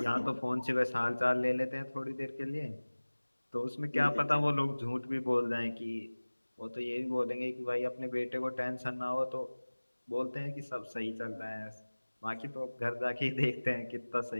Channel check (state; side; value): inverted; both; correlation -1.00